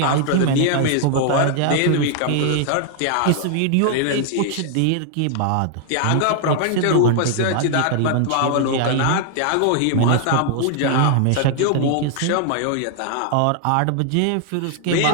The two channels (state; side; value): different; both; correlation 0.00